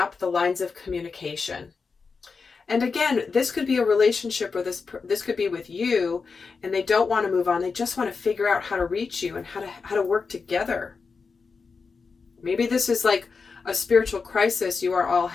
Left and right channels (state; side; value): quieter; right; 4.9 dB